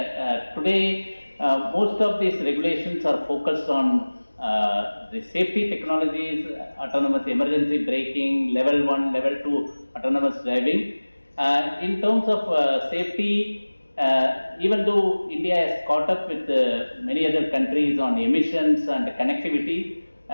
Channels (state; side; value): inverted; both; correlation -1.00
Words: Today, most of these regulations are focused on the safety technologies, autonomous emergency braking, level 1, level 2 autonomous driving. In terms of safety, even though India has caught up with many other countries on emissions and connectivity,